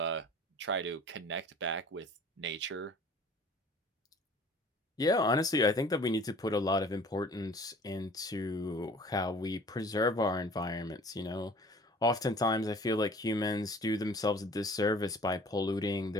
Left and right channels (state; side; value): normal; both; correlation 0.48